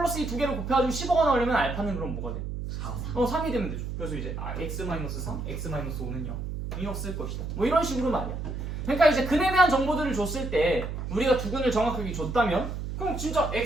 2 두 개를 곱해가지고 15가 나오려면 알파는 그럼 뭐가 돼? 3. 3이 되면 되죠. 그래서 이제 x-3, x-5는 0. 이 없을 것이다. 뭐 이런 식으로 말이야. 그러니까 이제 근에 대한 정보들을 줬을 때 우리가 두 근을 정확하게 줬다면 그럼 진짜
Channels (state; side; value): noise; right; hum, 5 dB below the sound